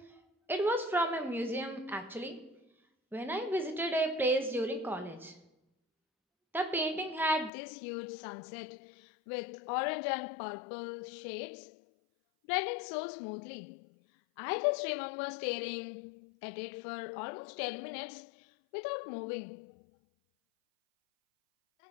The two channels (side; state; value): right; drops out; at 7.5 s